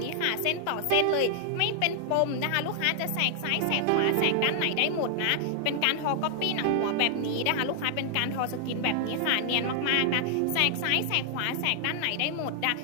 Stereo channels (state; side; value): different; both; correlation 0.00